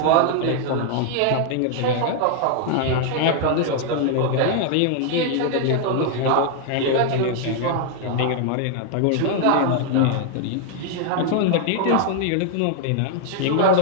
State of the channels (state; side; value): different; both; correlation 0.00